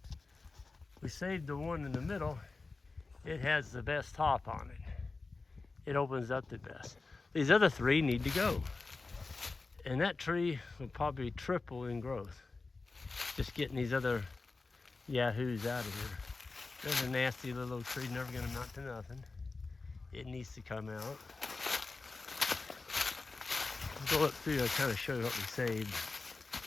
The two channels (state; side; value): quieter; right; 3.8 dB